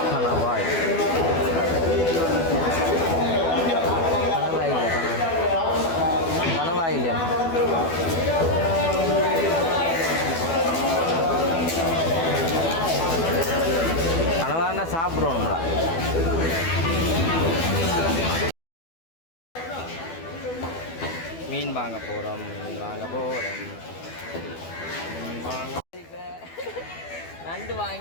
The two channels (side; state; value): right; late; 12 ms